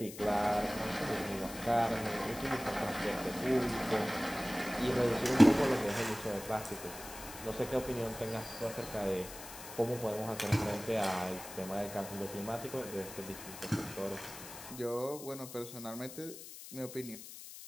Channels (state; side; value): noise; left; hiss, 13 dB below the sound